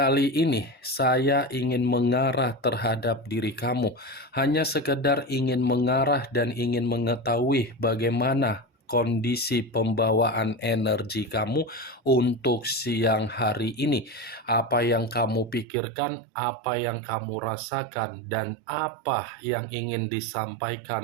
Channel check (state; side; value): drops out; left; at 15.7 s